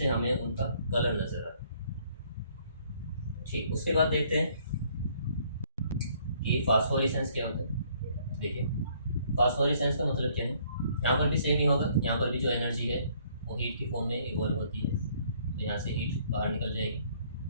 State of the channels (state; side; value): inverted; both; correlation -0.63